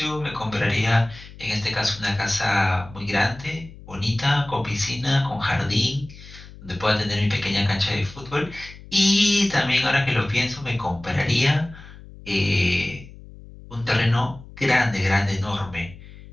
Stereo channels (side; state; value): left; noise; hum, 18 dB below the sound